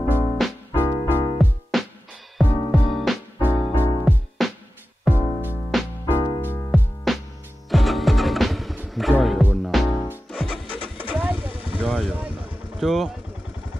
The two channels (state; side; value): normal; both; correlation 0.94